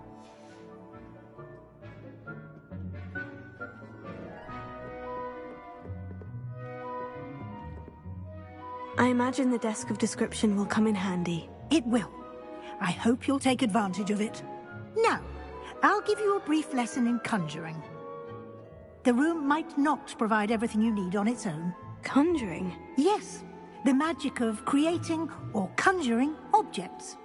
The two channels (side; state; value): both; identical; correlation 1.00